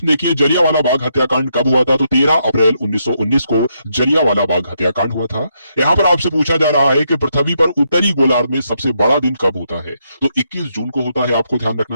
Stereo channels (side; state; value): both; inverted; correlation -0.78